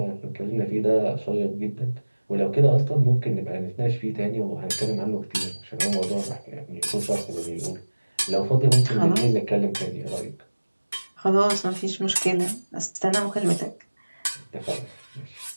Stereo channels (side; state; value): both; inverted; correlation -1.00